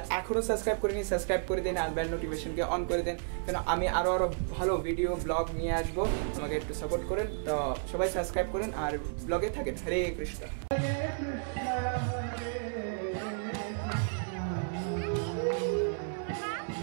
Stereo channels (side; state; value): left; silent; digital silence